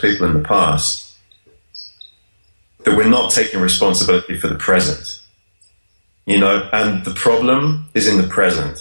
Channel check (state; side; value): inverted; both; correlation -1.00